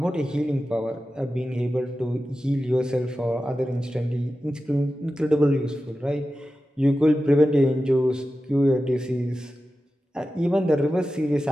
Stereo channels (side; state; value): both; normal; correlation 0.93